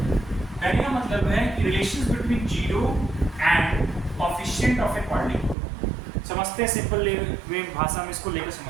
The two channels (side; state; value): left; drops out; at 5.6 s